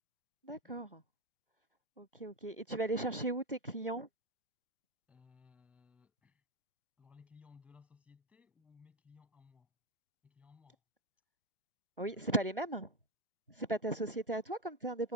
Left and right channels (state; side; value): normal; both; correlation 0.13